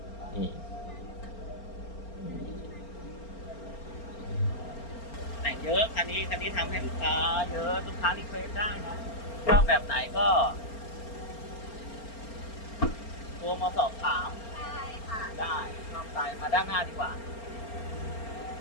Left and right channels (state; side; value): late; right; 4.4 ms